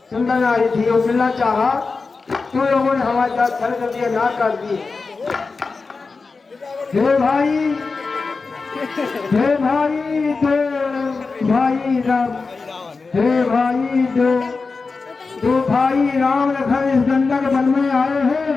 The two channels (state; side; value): quieter; right; 4.3 dB